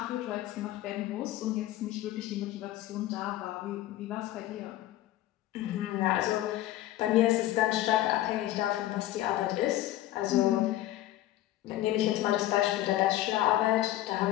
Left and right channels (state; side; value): quieter; right; 14.6 dB